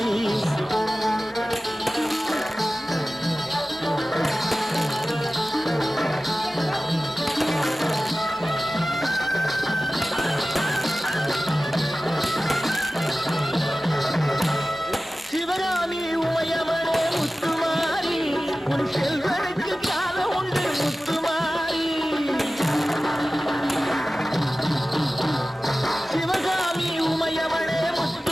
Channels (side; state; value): both; normal; correlation 0.96